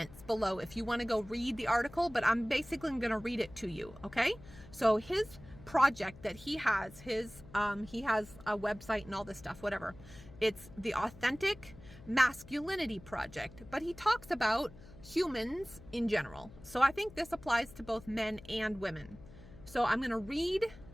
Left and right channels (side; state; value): left; noise; hum, 19 dB below the sound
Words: below if you want to go read the article, but I'm basically going to read it to you, okay? So his project that he has, he has a website and all this stuff, whatever. It's the Authentic Masculinity Project, but he talks about humans in general. So I think this applies to both men and women. So I'm going to read